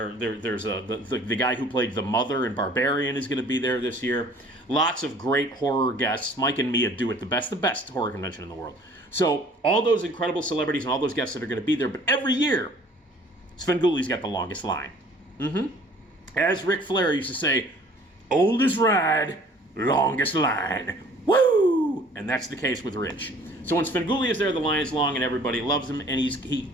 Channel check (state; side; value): normal; both; correlation 0.53